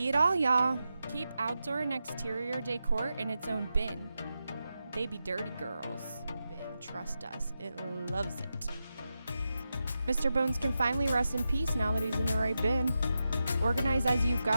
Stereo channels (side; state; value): both; inverted; correlation -0.89